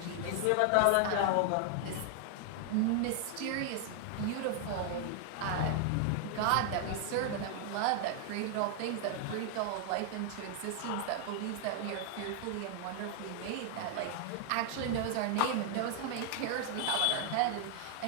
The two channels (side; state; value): both; different; correlation 0.00